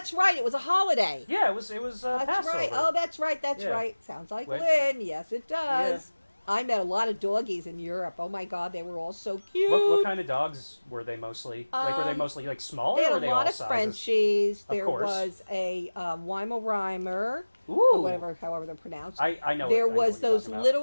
right. It was a holiday. Yeah, it was. That's Passover. Right. Oh, that's right. That's right. Sounds like Lynn. Yes, it does. Yeah. I met a lot of doggies in Europe. Oh my God, they were all so cute. What kind of dogs were they mostly? Were they mostly like small? They had or were they a lot all of sizes? Frenchies. There was a Weimaraner, or however they're pronounced. I know. There was those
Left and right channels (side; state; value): both; inverted; correlation -1.00